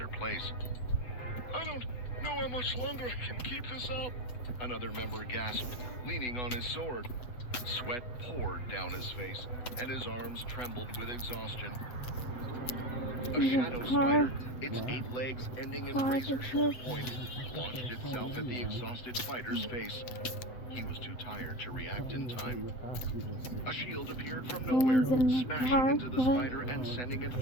place. "I don't know how much longer I can keep this up," another member gasped, leaning on his sword. Sweat poured down his face, and his arms trembled with exhaustion. A shadow spider, its 8 legs ending in razor-sharp points, launched itself at the exhausted fighter's face. He was too tired to react in time. A shield appeared from nowhere, smashing into the spider and sending it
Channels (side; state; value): right; late; 7.6 ms